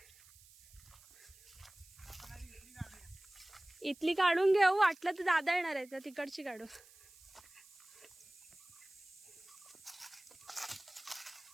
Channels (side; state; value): right; noise; hiss, 23 dB below the sound